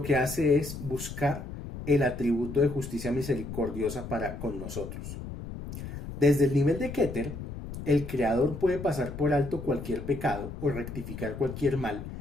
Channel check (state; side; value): noise; left; rumble, 9 dB below the sound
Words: que hace es buscar el atributo de justicia misericordiosa para con nosotros. Desde el nivel de Keter, el Creador puede pasar por alto cualquier pecado o rectificar cualquier mal